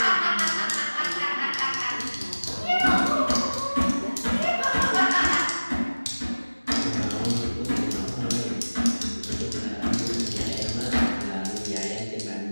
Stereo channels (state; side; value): inverted; both; correlation -1.00